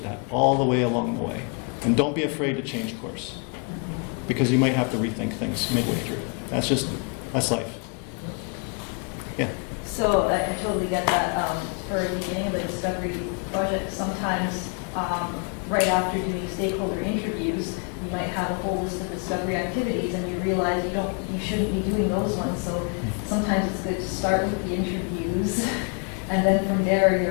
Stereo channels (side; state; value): right; quieter; 38.7 dB